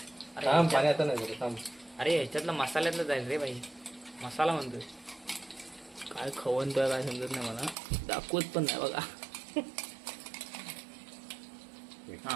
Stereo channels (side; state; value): left; drops out; at 7.8 s